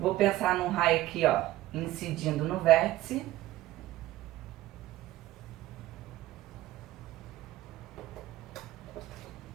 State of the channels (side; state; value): left; quieter; 15.8 dB